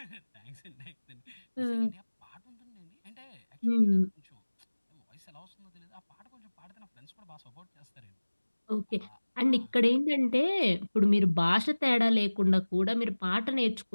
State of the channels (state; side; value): inverted; both; correlation -1.00